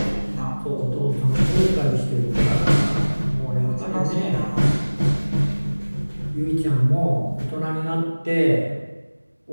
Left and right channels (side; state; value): both; inverted; correlation -1.00